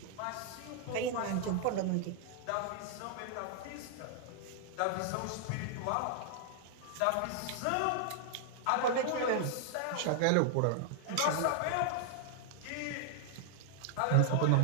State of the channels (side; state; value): both; different; correlation -0.01